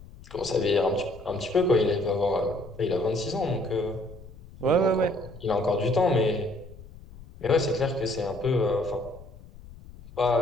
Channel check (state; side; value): noise; left; rumble, 18 dB below the sound